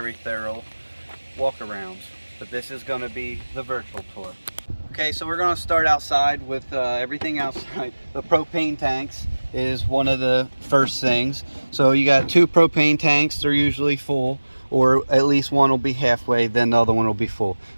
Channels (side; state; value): both; inverted; correlation -1.00